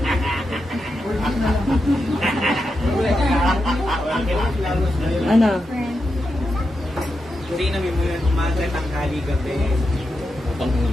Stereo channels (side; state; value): both; normal; correlation 0.87